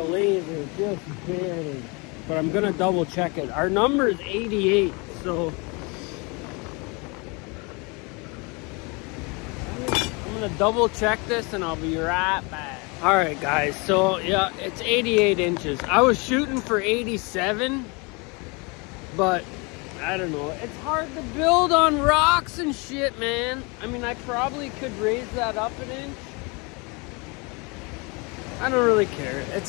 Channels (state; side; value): quieter; right; 29.4 dB